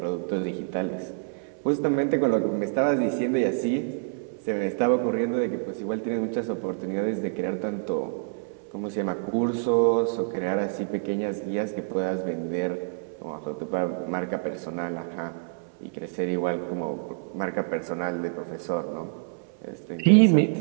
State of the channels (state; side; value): silent; left; 59 dB below the other